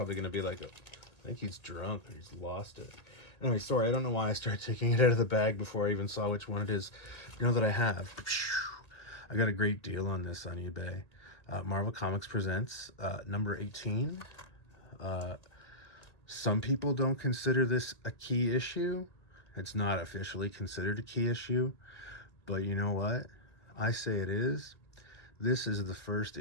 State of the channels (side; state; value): right; late; 2.0 ms